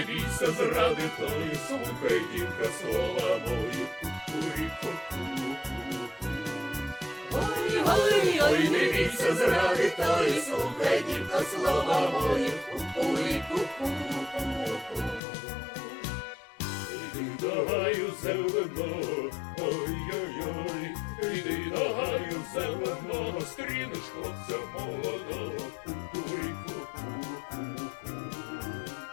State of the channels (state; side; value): drops out; right; at 15.2 s